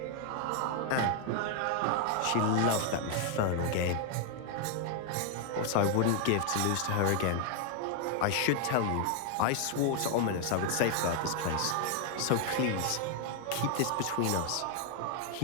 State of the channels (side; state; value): both; different; correlation 0.00